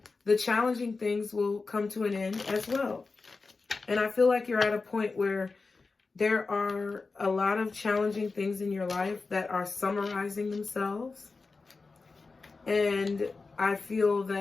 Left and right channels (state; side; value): quieter; right; 4.1 dB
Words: the challenging things will come to an end as well. And I feel like you're at a point where there are a lot of challenging things in your life that are summarizing themselves. And I feel